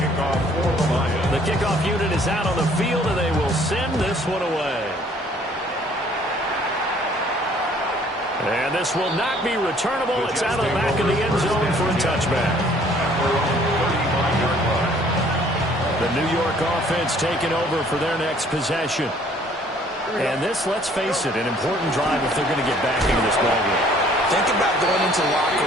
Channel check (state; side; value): normal; both; correlation 0.58